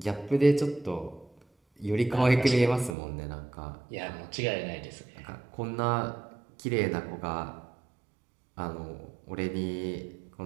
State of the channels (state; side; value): drops out; left; at 3.0 s